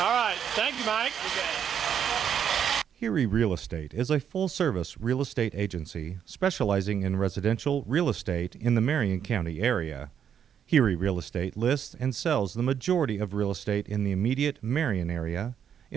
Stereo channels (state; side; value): quieter; left; 8.5 dB